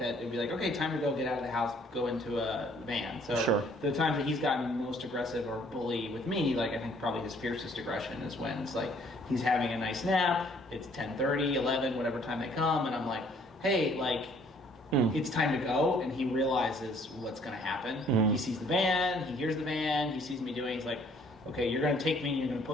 that. It'd be like, okay, time to go get out of the house, go into a van. So Sure. the times that he's gotten most aggressive or bully with me, like I think probably his fiercest aggression is when it's like, he's having a nice nap, it's 10:30, 11, whatever time they come, and I'm like, hey, like, it's time to go, and he realizes what's going to happen. He sees the van, he hears the van, he sees me doing, he's like, okay, you're going to take me and you're going to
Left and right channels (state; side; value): normal; both; correlation 0.61